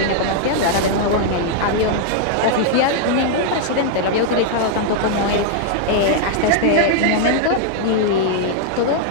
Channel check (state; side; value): different; both; correlation -0.01